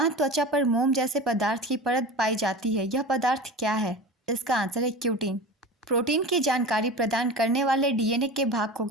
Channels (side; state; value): both; normal; correlation 0.32